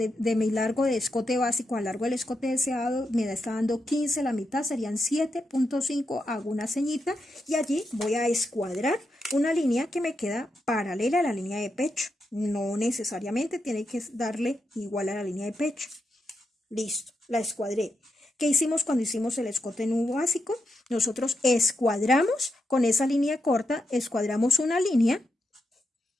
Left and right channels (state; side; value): normal; both; correlation 0.85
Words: de mi largo de escote básico al largo del escote deseado me está dando 15, la mitad serían 7.5, hago una ceñita y allí voy a escuadrar una línea que me queda paralela a la línea de pecho. No necesariamente tiene que darle igual a la línea de pecho. Listo, la escuadré. ¿Qué hicimos cuando hicimos el escote nudo básico? Nosotros escuadramos con esa línea corta, escuadramos una línea